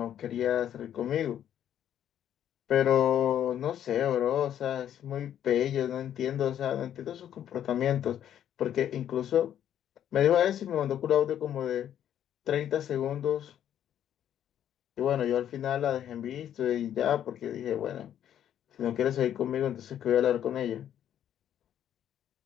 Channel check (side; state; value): right; quieter; 10.3 dB